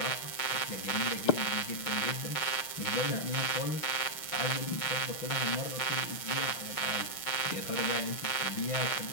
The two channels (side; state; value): right; late; 5.5 ms